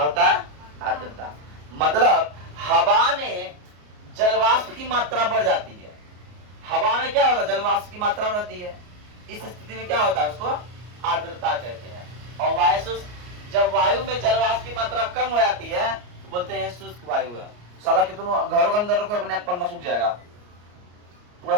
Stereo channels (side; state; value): left; late; 34 ms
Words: होता है, आर्द्रता। मतलब हवा में जलवाष्प की मात्रा बढ़ जाती है। हवा में क्या होता है, जलवाष्प की मात्रा बढ़ती है। इस स्थिति में क्या होता है, उसको आर्द्रता कहते हैं। और जब वायु में जलवाष्प की मात्रा कम हो जाती है तो बोलते हैं शुष्क वायु है। साला कितनों घरों के अंदर रखो, अपने आप पन्ना सूख जाएगा, पूरा